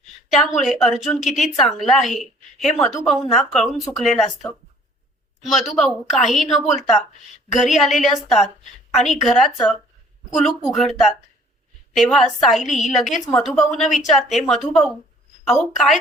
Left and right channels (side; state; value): both; normal; correlation 0.56